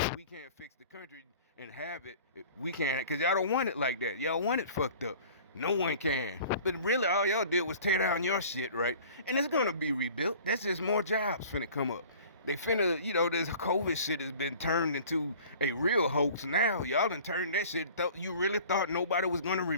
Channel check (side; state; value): both; inverted; correlation -0.46